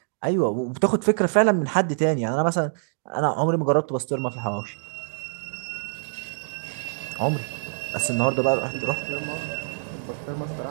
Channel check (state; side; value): silent; left; digital silence